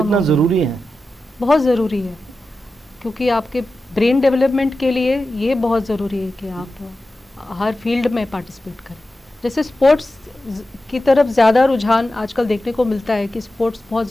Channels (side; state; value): both; normal; correlation 0.92